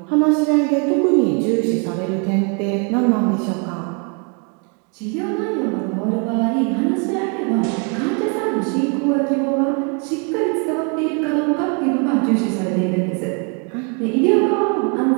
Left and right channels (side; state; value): left; quieter; 36.2 dB